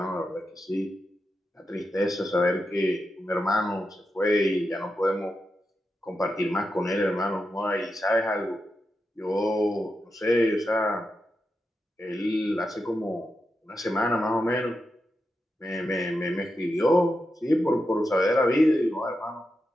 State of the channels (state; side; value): normal; both; correlation 0.87